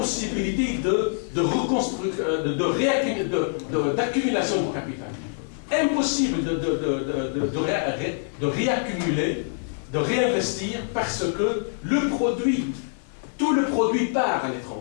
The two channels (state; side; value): silent; right; 55 dB below the other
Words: d'accumulation de capital. Impossible de réaccumuler, de réinvestir, parce que tout le produit part à